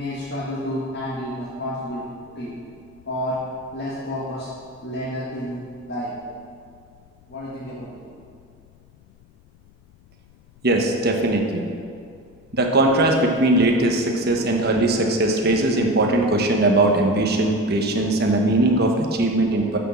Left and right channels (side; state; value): left; noise; rumble, 28 dB below the sound